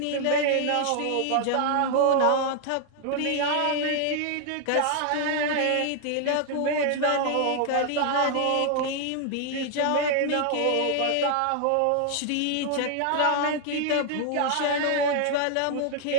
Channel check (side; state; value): both; different; correlation 0.00